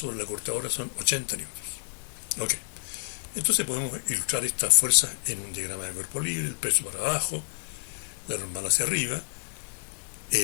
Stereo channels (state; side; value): silent; right; digital silence